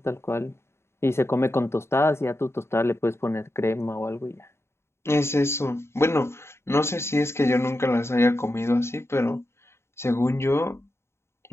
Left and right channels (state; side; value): late; right; 0.13 ms